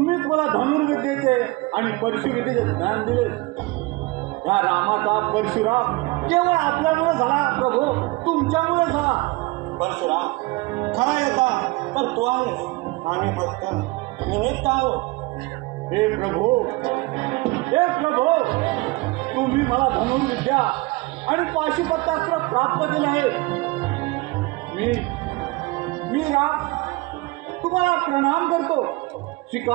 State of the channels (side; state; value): left; quieter; 23.2 dB